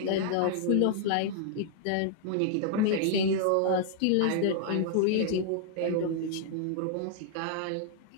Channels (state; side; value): different; both; correlation -0.01